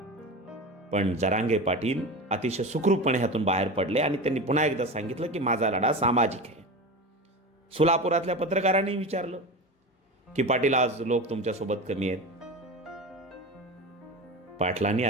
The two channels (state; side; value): normal; both; correlation 0.27